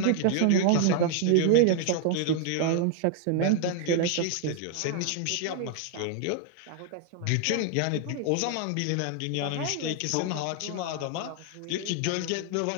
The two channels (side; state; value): both; different; correlation 0.00